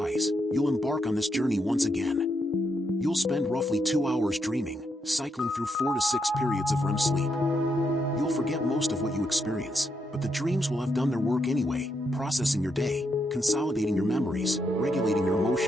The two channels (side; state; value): both; normal; correlation 0.80